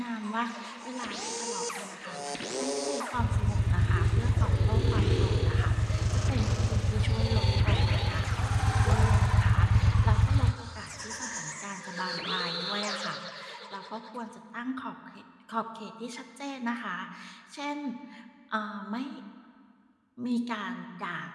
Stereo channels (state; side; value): identical; both; correlation 1.00